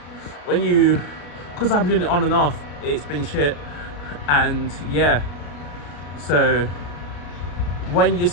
when you, because I've been doing it on and off, it's been shit. And yeah, so when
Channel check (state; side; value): late; right; 34 ms